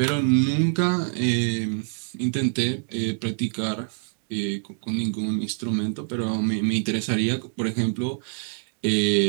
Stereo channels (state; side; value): silent; left; digital silence